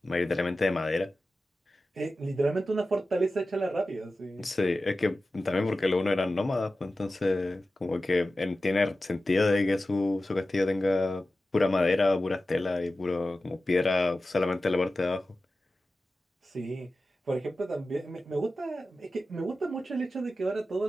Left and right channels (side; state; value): both; normal; correlation 0.94